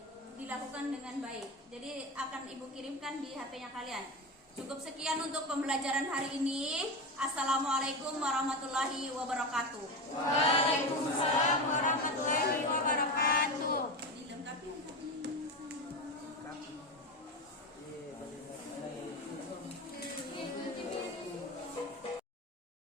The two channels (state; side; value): normal; both; correlation 0.21